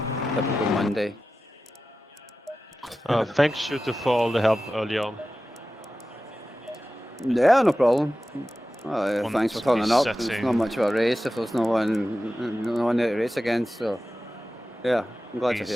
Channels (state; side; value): normal; both; correlation 0.94